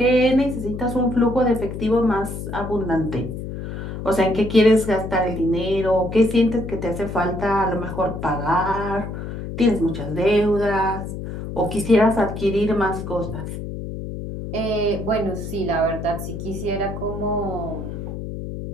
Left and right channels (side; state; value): left; noise; hum, 7 dB below the sound